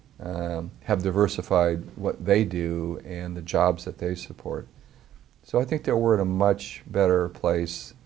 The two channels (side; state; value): left; quieter; 11.9 dB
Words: have diversified what they do and the jobs that they support. So I think that we're in a much better place,